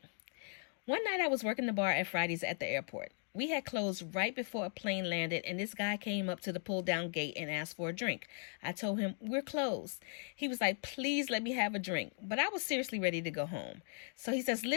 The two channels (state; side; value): silent; right; 53 dB below the other